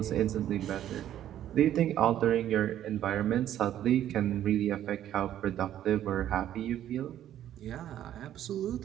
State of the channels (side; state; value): left; quieter; 11.5 dB